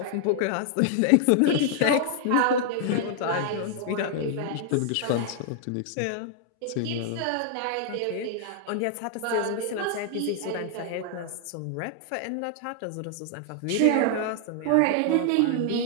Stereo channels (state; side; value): different; both; correlation 0.00